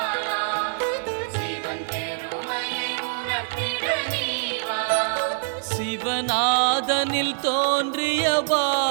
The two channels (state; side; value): silent; left; 62 dB below the other